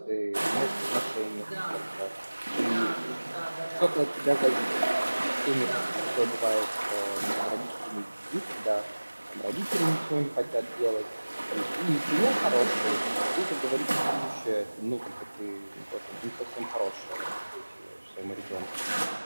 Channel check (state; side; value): inverted; both; correlation -1.00